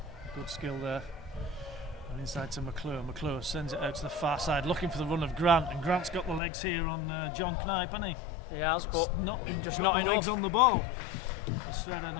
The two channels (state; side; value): drops out; right; at 6.4 s